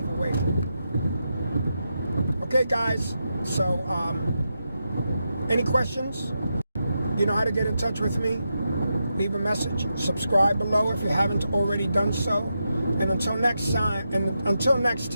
Okay, guys, so any questions? You know how to get in touch with me. Leave a message. Subscribe below if you haven't already done so. And until next time,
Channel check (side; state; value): both; inverted; correlation -0.86